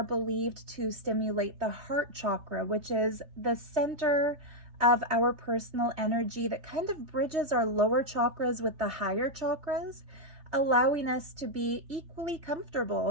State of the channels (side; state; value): left; late; 3.2 ms